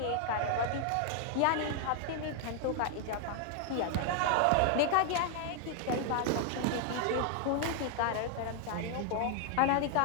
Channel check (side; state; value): both; different; correlation 0.00